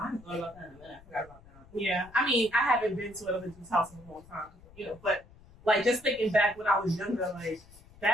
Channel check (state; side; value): noise; left; rumble, 23 dB below the sound